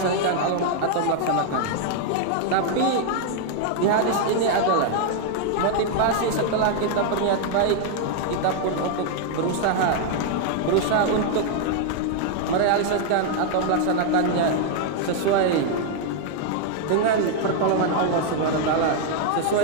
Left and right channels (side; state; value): both; different; correlation 0.00